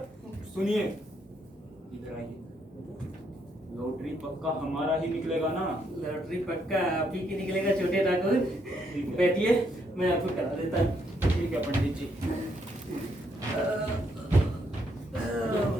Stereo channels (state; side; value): normal; both; correlation 0.74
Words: सुनिए, इधर आइए। लॉटरी पक्का हमारा ही निकलेगा ना? लॉटरी पक्का आप ही की निकलेगा छोटे ठाकुर। ठीक है। बैठिए, मैं आपको करा देता हूँ। ठीक है पंडित जी।